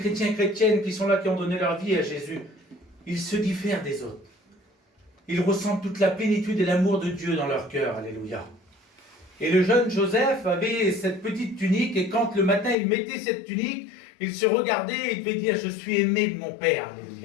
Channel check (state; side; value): drops out; right; at 12.8 s